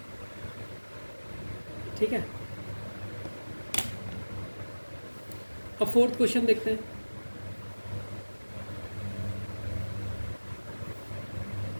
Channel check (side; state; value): both; inverted; correlation -1.00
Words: ठीक है, अब फोर्थ क्वेश्चन देखते हैं।